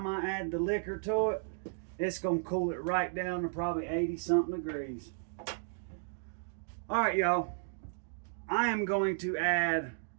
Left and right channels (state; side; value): silent; left; digital silence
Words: I add the liquor to it, it's going to cool it right down to probably 80 something degrees. All right, y'all. I am going to add